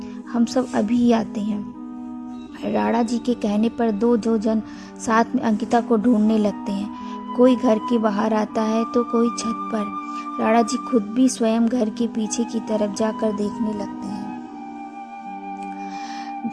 हम सब अभी ही आते हैं। राणा जी के कहने पर दो जन साथ में अंकिता को ढूंढने लगते हैं। कोई घर के बाहर आता है तो कोई छत पर। राणा जी खुद भी स्वयं घर के पीछे की तरफ जाकर देखने लगते हैं।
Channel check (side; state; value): both; identical; correlation 1.00